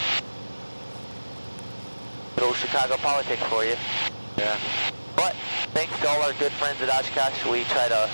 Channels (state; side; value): inverted; both; correlation -1.00